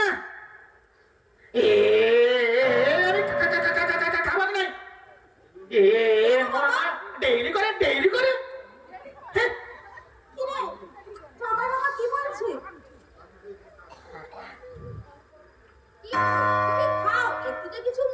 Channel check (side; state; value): both; identical; correlation 1.00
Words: না, খাবার নাই। ডেইলি করে ডেইলি করে। কি রে, সবাই বাবা কি বলছে? তুমি খাও, একটু তো কিছু